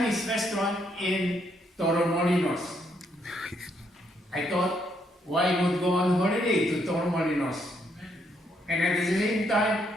restaurant in Torremolinos. I thought, why not go on holiday to Torremolinos? And at the same time,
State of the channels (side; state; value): both; normal; correlation 0.73